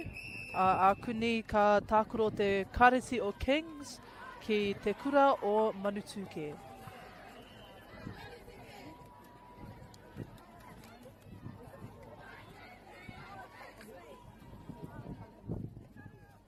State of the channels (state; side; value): identical; both; correlation 1.00